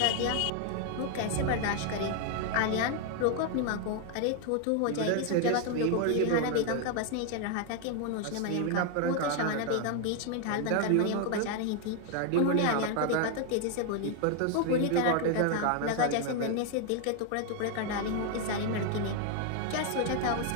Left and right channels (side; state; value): both; different; correlation 0.00